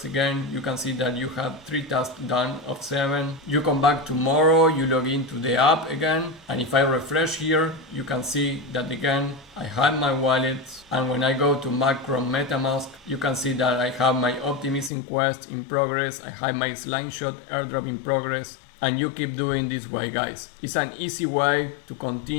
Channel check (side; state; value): right; drops out; at 14.9 s